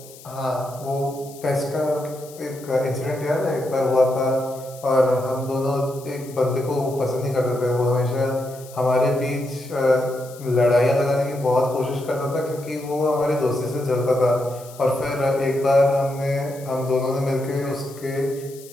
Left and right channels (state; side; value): noise; left; hiss, 20 dB below the sound